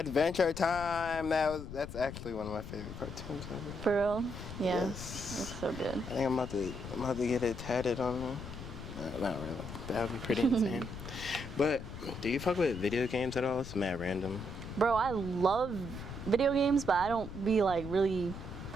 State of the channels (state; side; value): noise; left; rumble, 10 dB below the sound